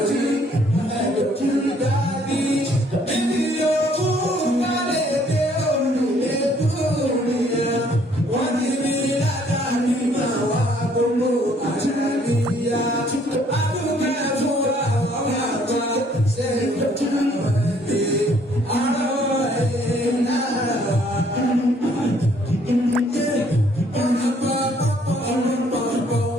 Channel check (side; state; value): both; normal; correlation 0.63